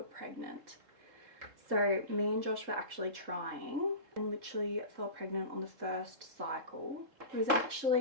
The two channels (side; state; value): left; late; 3.7 ms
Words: pregnant. So me and Josh were actually trying and literally fell pregnant on the first cycle. It was